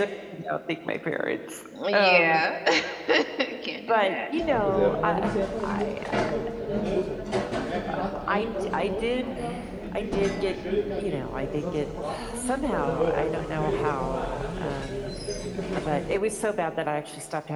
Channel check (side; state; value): both; identical; correlation 1.00